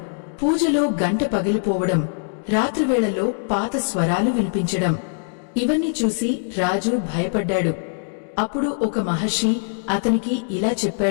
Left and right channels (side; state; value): right; silent; digital silence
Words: పూజలో గంట పగిలిపోవడం, రాత్రివేళల్లో పాత స్వరాలు వినిపించడం, ఇవన్నీ చూసి రాజు భయపడ్డాడు. అప్పుడు ఒక మహర్షి అతనికి ఇలా